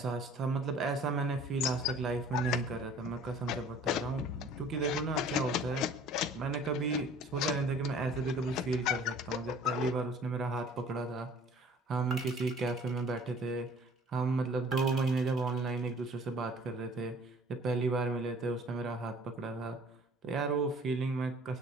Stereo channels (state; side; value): normal; both; correlation 0.50